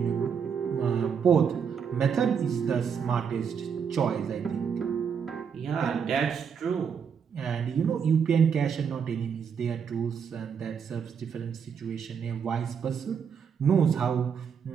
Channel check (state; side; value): quieter; left; 6.9 dB